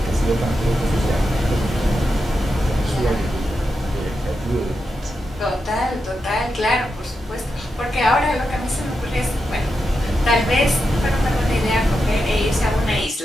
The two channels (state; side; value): normal; both; correlation 0.87